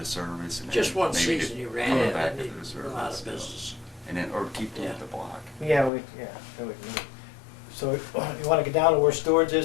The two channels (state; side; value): drops out; right; at 5.9 s